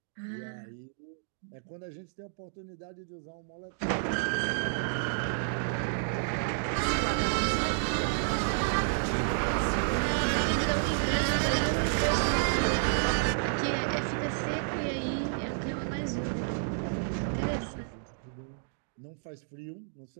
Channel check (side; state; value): left; silent; digital silence